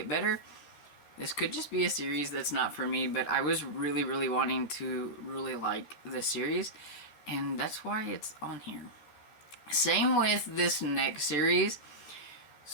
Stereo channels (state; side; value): late; right; 13 ms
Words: better. This could just be a series that's not for me, but I was really, really wanting to really like this series, and that's why it's on here. Same with this next series.